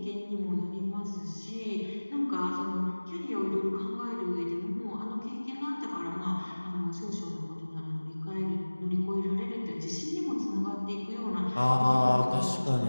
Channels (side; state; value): both; inverted; correlation -1.00